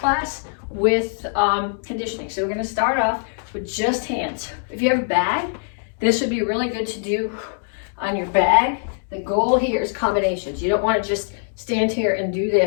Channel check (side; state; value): right; silent; digital silence